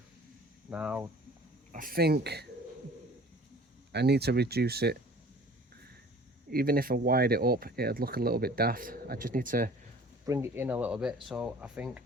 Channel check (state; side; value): normal; both; correlation 0.47